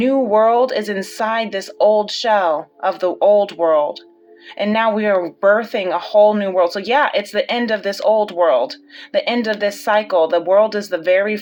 world is inside this old shell of the old world. And now we are birthing a whole new world. So yeah, it's the end of this old world, the end of this cycle. The world is the very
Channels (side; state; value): both; identical; correlation 1.00